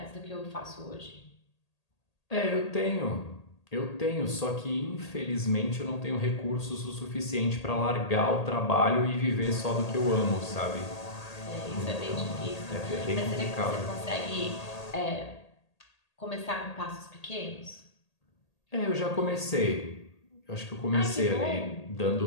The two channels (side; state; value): right; late; 1.8 ms